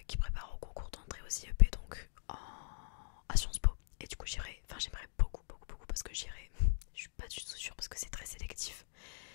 qui prépare au concours d'entrée au IEP, donc à Sciences Po. Et du coup j'aimerais beaucoup parce que j'irai, je suis pas du tout sûre parce que c'est très sélectif,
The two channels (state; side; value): silent; right; digital silence